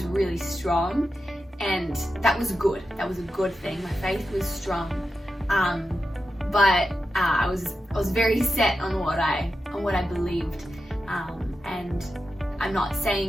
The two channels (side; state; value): both; normal; correlation 0.90